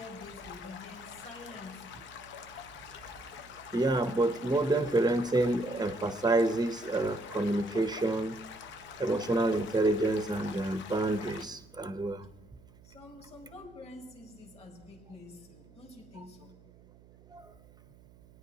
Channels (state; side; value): noise; right; hum, 24 dB below the sound